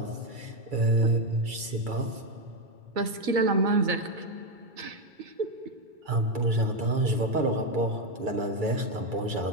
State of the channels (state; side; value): late; left; 2.3 ms